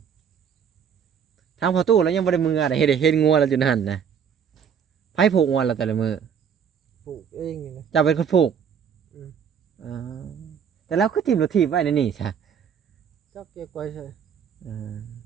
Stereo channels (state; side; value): quieter; left; 7.5 dB